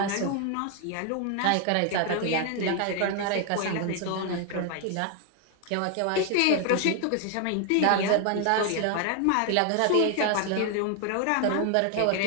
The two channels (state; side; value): different; both; correlation 0.01